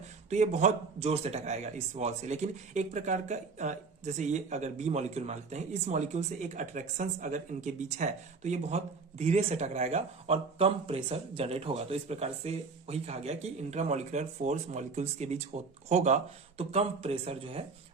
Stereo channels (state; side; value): quieter; left; 4.5 dB